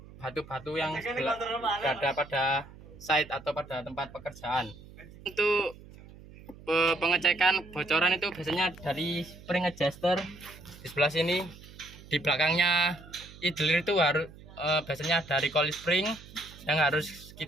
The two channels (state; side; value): noise; right; hum, 19 dB below the sound